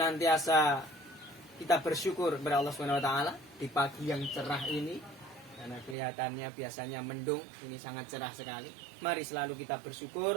kita bersyukur kepada Allah Subhanahu wa taala di pagi yang cerah ini, karena kelihatannya biasanya mendung, ini sangat cerah sekali. Mari selalu kita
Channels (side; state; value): left; drops out; at 6.0 s